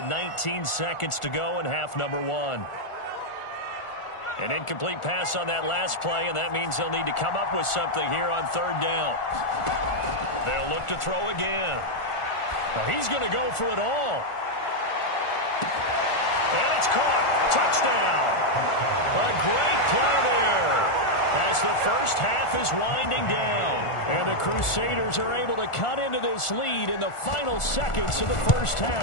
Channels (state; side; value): late; right; 1.4 ms